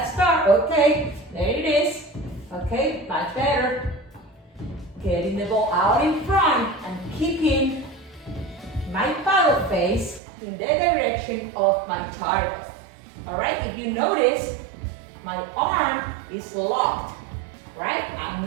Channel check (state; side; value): drops out; left; at 10.2 s